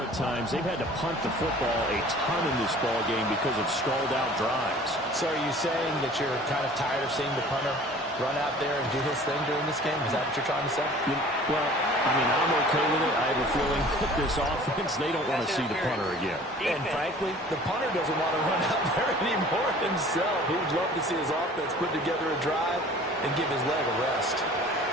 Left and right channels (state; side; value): normal; both; correlation 0.47